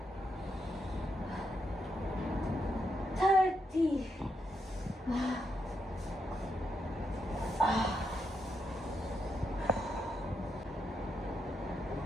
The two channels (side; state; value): both; normal; correlation 0.81